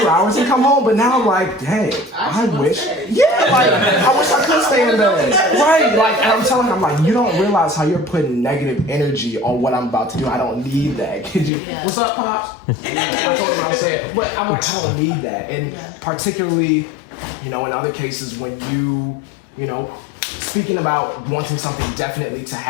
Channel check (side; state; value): right; drops out; at 11.5 s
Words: hours and come home. But now I'm like, dang, I wish. Yeah, like, I wish I could stay in bed. Right. Like, and I'm telling her, I'm like, you don't realize how you're putting negative energy on what I'm about to do. I don't need that. Could you? Yeah. What's up, Pops? I told him I was saying, but I'm like, I don't need that. And particularly, in other cases when you speaking about wanting something definitely to